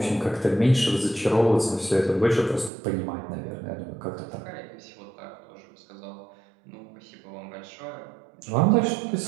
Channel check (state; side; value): drops out; left; at 2.7 s